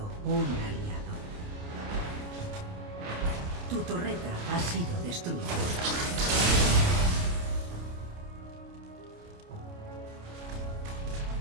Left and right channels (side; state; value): left; late; 29 ms